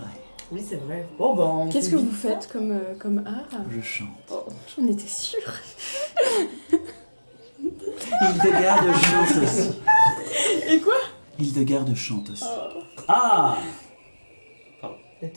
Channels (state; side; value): inverted; both; correlation -1.00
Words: Oui, c'est vrai. Bon, ben. Qu'est-ce que vous faites comme art? Je chante. Oh, j'en étais sûre. Hildegarde chante aussi. Et quoi? Hildegarde chante aussi. Ah Elle